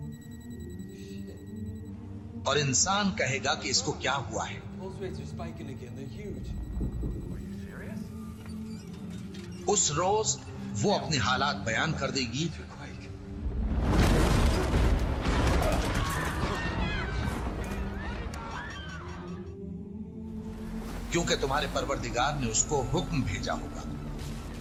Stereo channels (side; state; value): both; identical; correlation 1.00